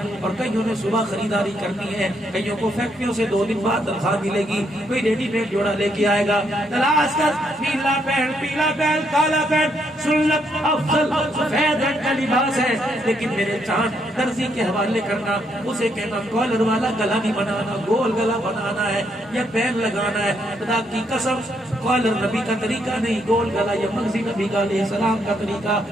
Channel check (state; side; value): normal; both; correlation 0.75